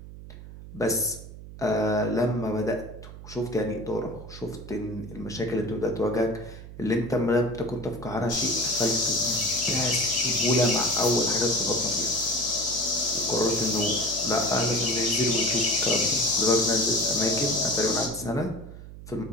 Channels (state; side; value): noise; right; hum, 14 dB below the sound